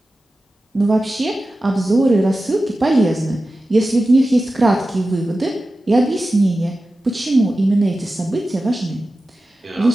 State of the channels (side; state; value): both; normal; correlation 0.94